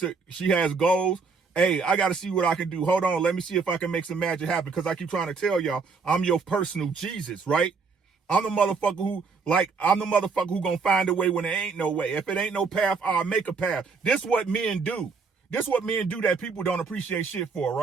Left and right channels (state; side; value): quieter; left; 4.9 dB